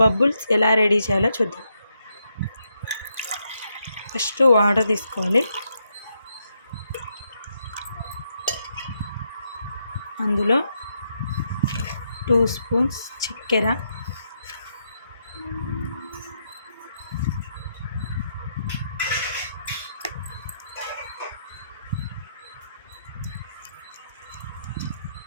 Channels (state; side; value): inverted; both; correlation -0.80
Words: ఎలా రెడీ చేయాలో చూద్దాం. ఫస్ట్ వాటర్ తీసుకోవాలి, అందులో 2 స్పూన్స్ చక్కెర,